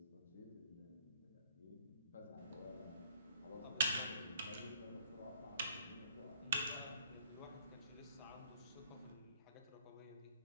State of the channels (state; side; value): inverted; both; correlation -0.61